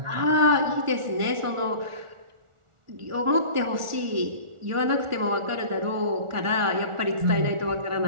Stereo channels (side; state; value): left; late; 1.4 ms